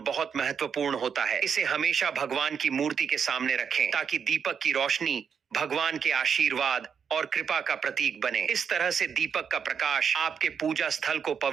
बहुत महत्वपूर्ण होता है। इसे हमेशा भगवान की मूर्ति के सामने रखें ताकि दीपक की रोशनी भगवान के आशीर्वाद, और कृपा का प्रतीक बने। इस तरह से दीपक का प्रकाश आपके पूजा स्थल को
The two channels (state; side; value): quieter; left; 6.9 dB